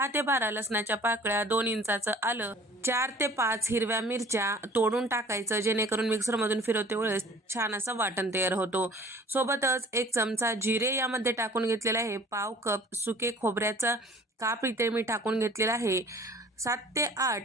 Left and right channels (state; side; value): normal; both; correlation 0.49